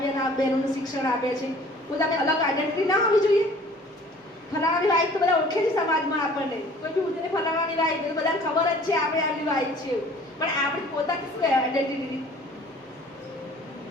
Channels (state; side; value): normal; both; correlation 0.51